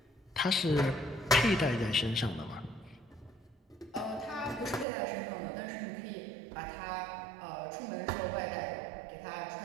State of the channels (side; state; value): left; drops out; at 4.9 s